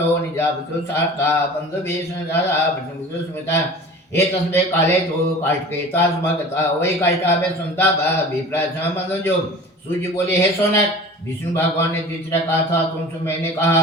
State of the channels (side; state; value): both; normal; correlation 0.40